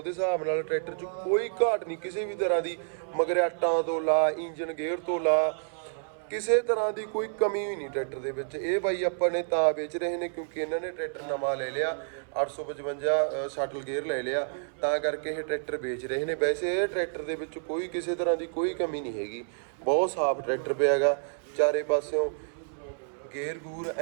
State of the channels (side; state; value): left; silent; 58 dB below the other